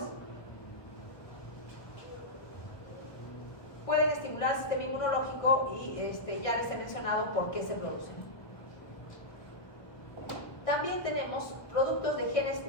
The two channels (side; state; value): right; late; 1.0 ms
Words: Pueden estimular el sistema inmunológico y ya les he mencionado por qué se producen. También tenemos productos de genes